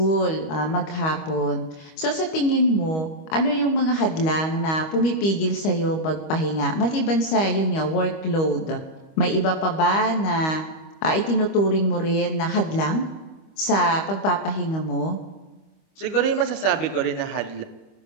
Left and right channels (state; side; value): late; right; 25 ms